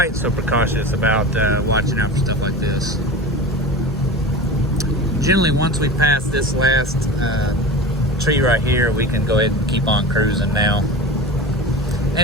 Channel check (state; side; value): normal; both; correlation 0.32